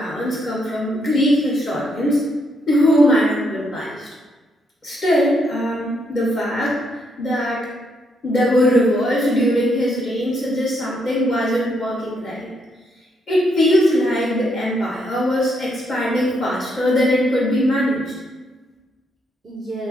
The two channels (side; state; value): both; normal; correlation 0.75